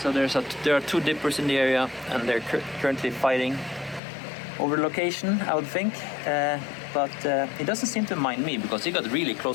there are two dippers in the area, and they're currently fighting over the location, I would think. But he doesn't seem to mind me because he got really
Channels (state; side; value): drops out; right; at 4.0 s